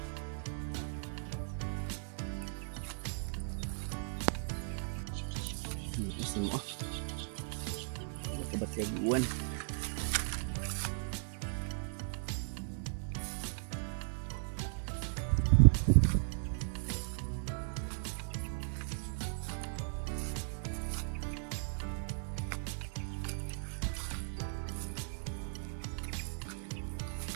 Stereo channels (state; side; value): silent; left; digital silence